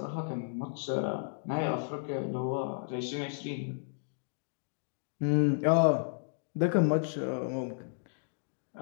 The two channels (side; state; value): right; silent; digital silence